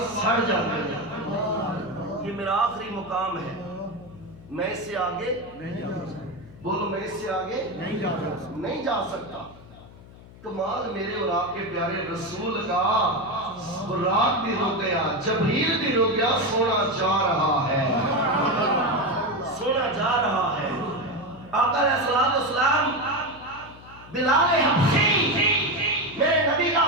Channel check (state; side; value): noise; left; hum, 20 dB below the sound